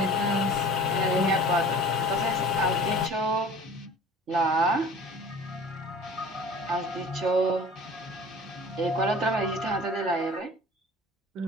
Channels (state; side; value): normal; both; correlation 0.44